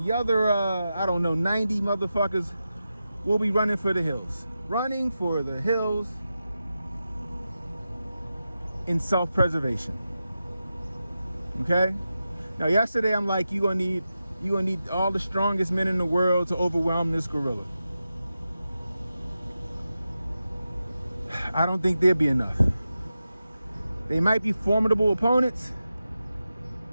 other, I don't know, 90 motherfuckers will be running for the hills. Running for the hills in self-preservation. Okay? Now, yesterday I'm like, you're gonna need all the strongest men in the world to overwhelm this gorilla. I don't think there'd be enough. They might be formidable opponents,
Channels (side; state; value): both; inverted; correlation -0.91